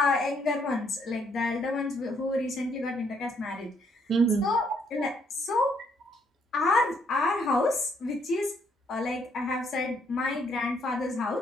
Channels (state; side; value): normal; both; correlation 0.70